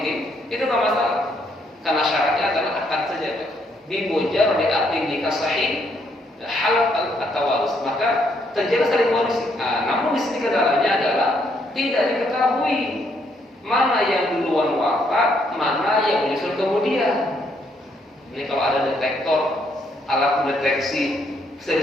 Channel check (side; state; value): both; normal; correlation 0.72